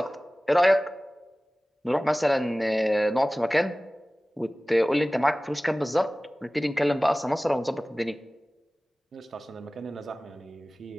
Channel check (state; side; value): normal; both; correlation 0.98